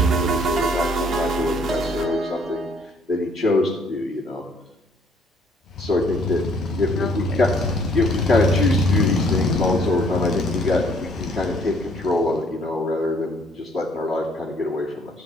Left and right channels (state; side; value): normal; both; correlation 0.63